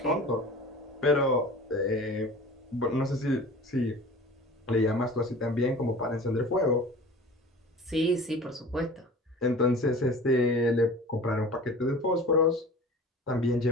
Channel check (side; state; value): both; normal; correlation 0.40